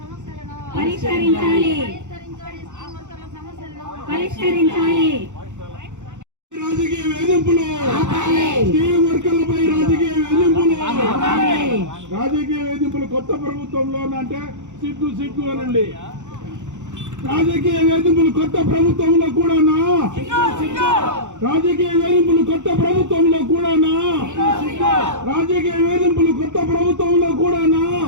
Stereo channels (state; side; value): late; left; 0.85 ms